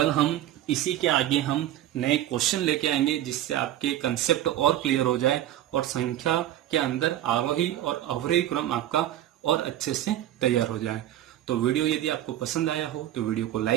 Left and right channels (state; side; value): quieter; left; 12.9 dB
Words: हम इसी के आगे हम नए क्वेश्चन लेके आएंगे, जिससे आपके कंसेप्ट और क्लियर हो जाए और संख्या के अंदर आरोही और अवरोही क्रम आपका और अच्छे से तैयार हो जाए। तो वीडियो यदि आपको पसंद आया हो तो वीडियो को